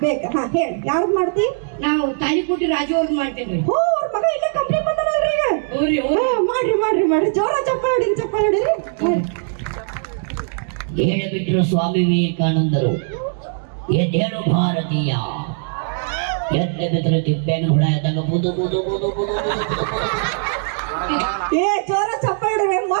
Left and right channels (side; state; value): left; silent; digital silence